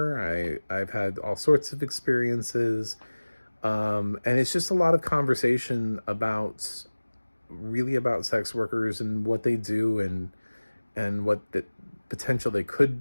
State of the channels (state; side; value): inverted; both; correlation -1.00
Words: I've had all sorts of experiences. And it's just a lot of conversation about sex workers and what they do and what the potential they could